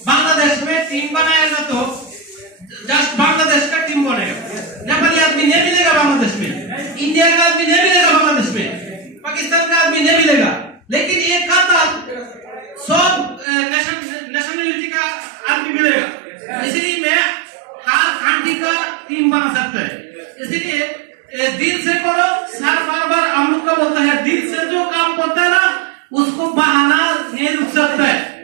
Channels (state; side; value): drops out; left; at 13.5 s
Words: बांग्लादेश में टीम बनाएगा तो जस्ट बांग्लादेश का टीम बनेगा नेपाली आदमी नहीं मिलेगा बांग्लादेश में इंडिया का आदमी नहीं मिलेगा बांग्लादेश में पाकिस्तान का आदमी नहीं मिलेगा लेकिन एक खाता सब नेशनलिटी का आदमी मिलेगा इसलिए मैं हर कंट्री का टीम बना सकता है इसलिए दिल से करो सर बार हम लोग का बोलता है दिल से जो काम करता है ना उसको बहाना नहीं रुक सकता है